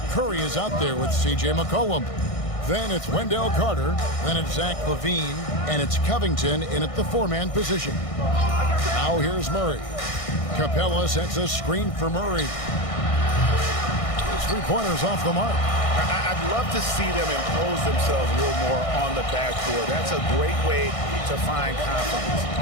Curry is out there with C.J. McCollum. Then it's Wendell Carter. Then it's Zach LaVine. And it's Covington in at the 4-man position. Now here's Murray. Capella sets a screen for Murray. His three-pointer's off the mark. I'd love to see them impose themselves a little more on the backboard. That's a great way to find confidence.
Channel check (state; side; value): late; right; 1.6 ms